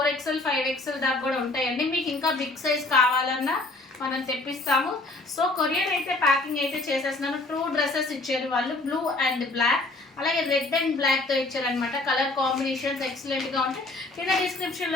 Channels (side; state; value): right; quieter; 3.0 dB